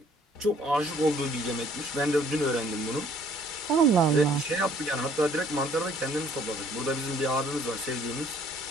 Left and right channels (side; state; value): both; normal; correlation 0.59